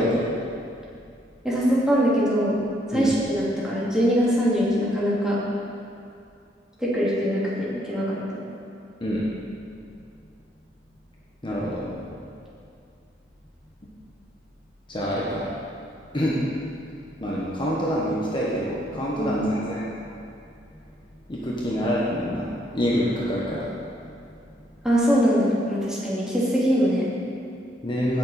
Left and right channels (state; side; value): normal; both; correlation 0.71